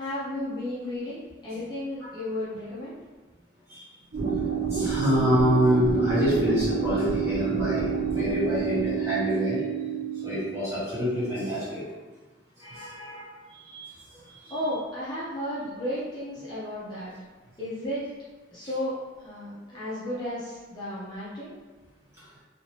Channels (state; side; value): normal; both; correlation 0.45